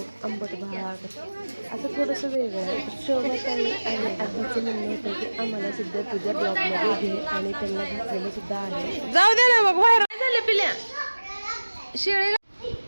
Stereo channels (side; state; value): both; inverted; correlation -1.00